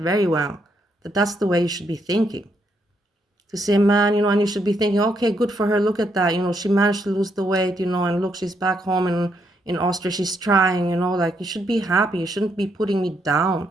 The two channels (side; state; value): both; normal; correlation 0.76